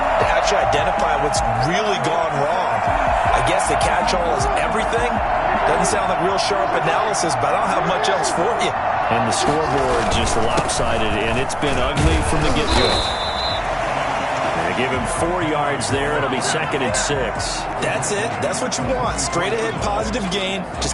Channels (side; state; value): both; identical; correlation 1.00